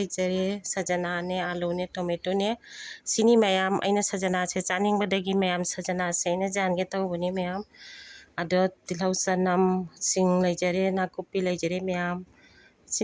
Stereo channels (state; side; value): identical; both; correlation 1.00